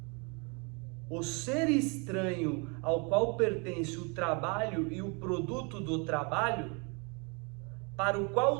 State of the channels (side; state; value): left; quieter; 32.4 dB